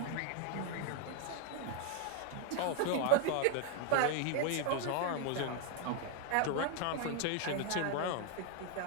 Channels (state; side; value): different; both; correlation 0.00